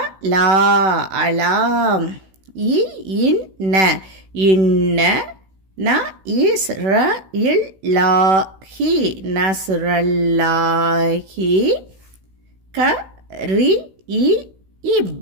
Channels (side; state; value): left; late; 16 ms